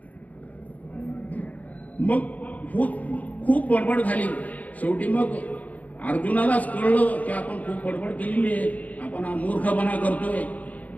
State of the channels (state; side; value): late; right; 0.074 ms